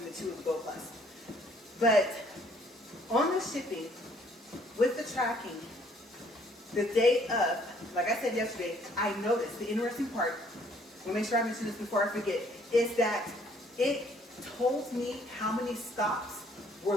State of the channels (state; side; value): normal; both; correlation 0.62